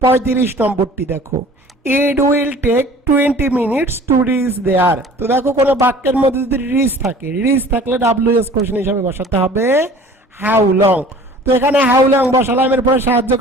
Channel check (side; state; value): both; normal; correlation 0.47